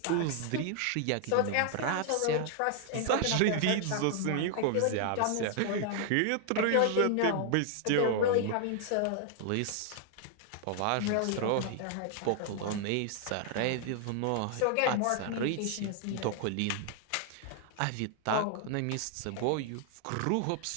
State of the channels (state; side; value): different; both; correlation 0.00